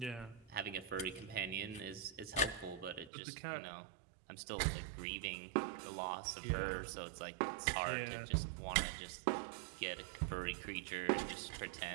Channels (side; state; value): left; drops out; at 3.1 s